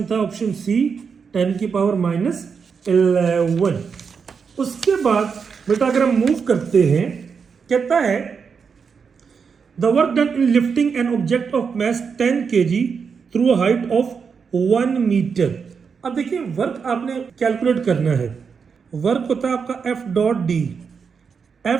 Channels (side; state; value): left; quieter; 6.0 dB